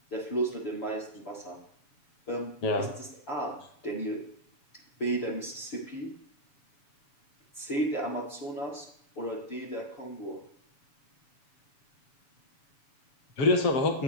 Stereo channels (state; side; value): late; right; 7.1 ms